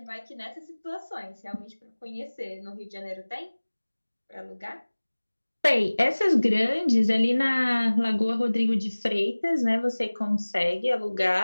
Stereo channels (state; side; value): inverted; both; correlation -1.00